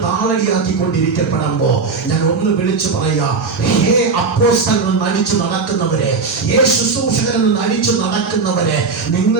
താളടിയാക്കിക്കൊണ്ടിരിക്കപ്പെടുമ്പോ ഞാൻ ഒന്ന് വിളിച്ചു പറയാ, ഹേ അപ്പോസ്തലൻ നടിച്ചു നടക്കുന്നവരെ, ഹേ ശുശ്രൂഷകൻ എന്ന് നടിച്ചു നടക്കുന്നവരെ,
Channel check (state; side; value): quieter; left; 4.5 dB